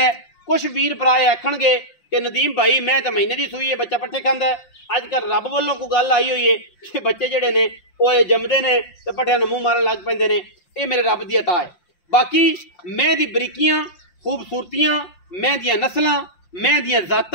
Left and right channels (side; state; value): right; late; 5.7 ms